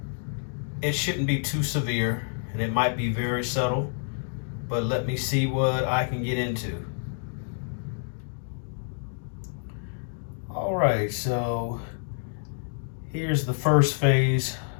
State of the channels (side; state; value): right; silent; digital silence